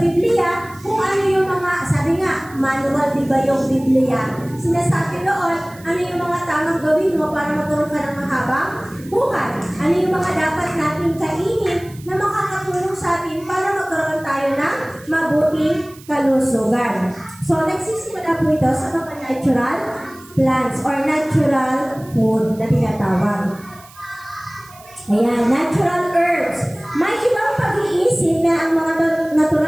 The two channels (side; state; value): right; noise; hiss, 23 dB below the sound